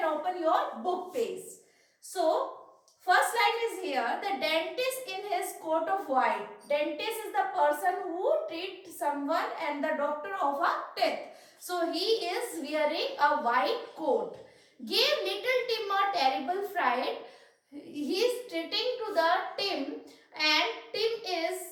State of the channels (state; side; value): identical; both; correlation 1.00